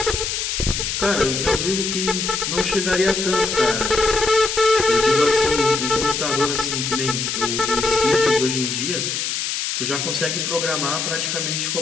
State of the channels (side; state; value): left; noise; hiss, 2 dB below the sound